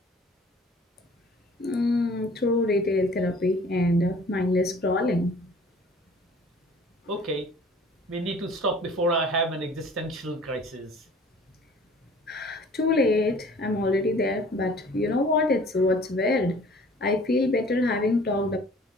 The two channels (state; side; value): normal; both; correlation 0.50